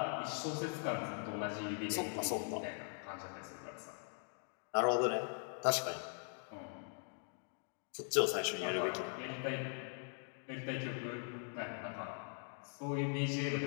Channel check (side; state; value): right; silent; 50 dB below the other